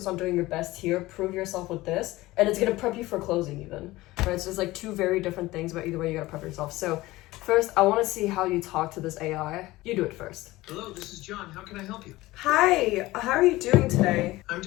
on doing your best here. Prove yourself with this, and it's gonna prep you for closing even. Right? So it's like two very different things, but either way, you gotta prep yourself. So First, I want to see how you talk to this AI. You do it first. Hello, this is John. How can I help you? Hi, how are you doing today? I'm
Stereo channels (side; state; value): right; quieter; 18.7 dB